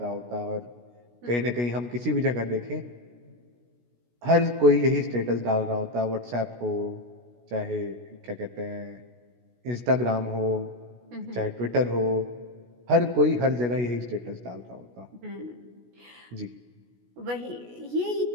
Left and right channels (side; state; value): left; late; 16 ms